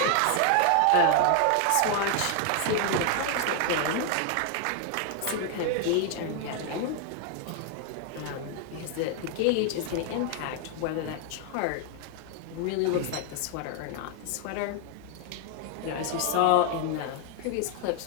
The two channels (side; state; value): both; different; correlation 0.00